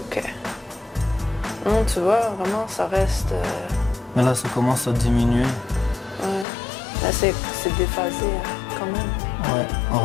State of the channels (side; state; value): right; drops out; at 6.5 s